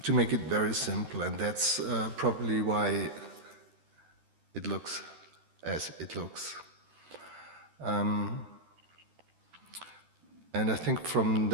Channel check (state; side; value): late; left; 12 ms